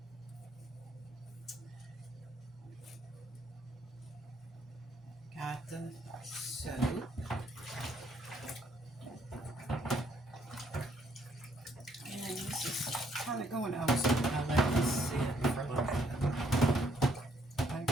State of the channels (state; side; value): normal; both; correlation 0.69